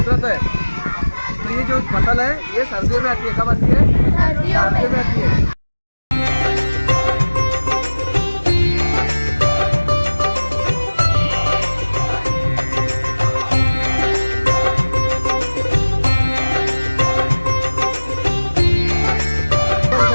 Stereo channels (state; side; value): inverted; both; correlation -1.00